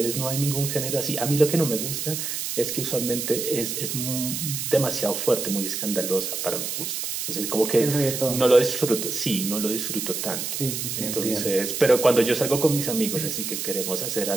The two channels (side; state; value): right; noise; hiss, 3 dB below the sound